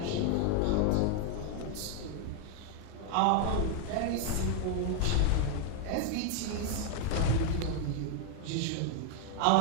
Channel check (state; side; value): different; both; correlation 0.00